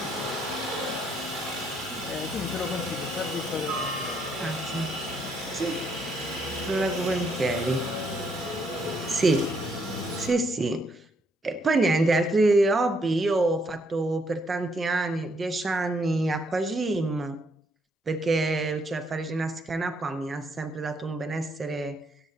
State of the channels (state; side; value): normal; both; correlation 0.72